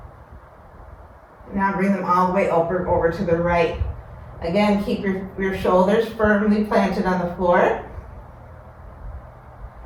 Now bring them all the way over to the right. Again, keep your shoulders firmly planted on the floor.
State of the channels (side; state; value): both; identical; correlation 1.00